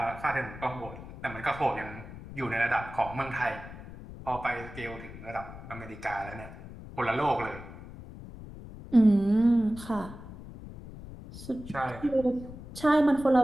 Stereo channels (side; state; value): left; noise; rumble, 14 dB below the sound